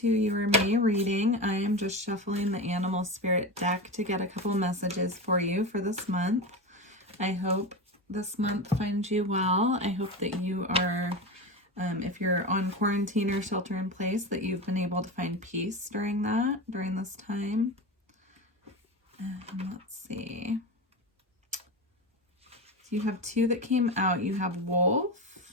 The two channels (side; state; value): both; normal; correlation 0.22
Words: your May reading. I am just shuffling the Animal Spirit deck to get a couple messages for you for this month. I hope this month finds you well. I hope that you are, if you're on quarantine or shelter in place, that you've been able to find peace during this time. Let's see. So you have two that came out. You have Wolf,